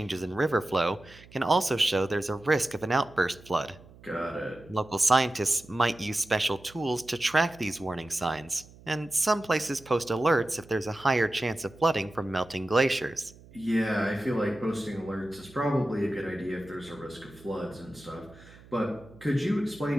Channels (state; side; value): noise; right; hum, 22 dB below the sound